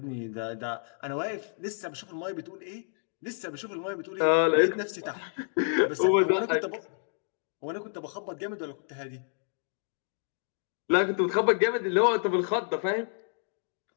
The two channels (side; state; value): right; silent; digital silence